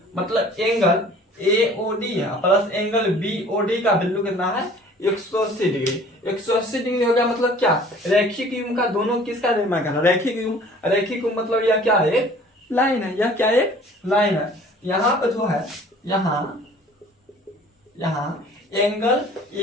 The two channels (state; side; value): normal; both; correlation 0.50